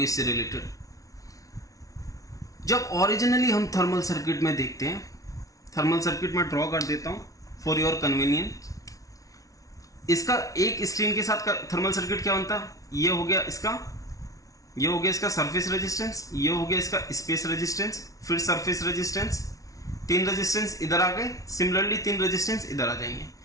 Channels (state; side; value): late; right; 0.17 ms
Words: इससे रिलेटेड। जब ओरिजिनली हम थर्मल सर्किट में देखते हैं, थर्मल सर्किट में ड्रॉ कर देता हूं फॉर योर कन्वीनियंस। इसका एक स्क्रीन के साथ थर्मल सर्किट क्या बनता है, ये हो गया इसका, ये हो गया इसका सरफेस रेजिस्टेंस, ये हो गया इसका स्पेस रेजिस्टेंस, फिर सरफेस रेजिस्टेंस, 3 रेजिस्टेंस इधर आ गए, सिमिलरली 3 रेजिस्टेंस इधर आ जाएंगे,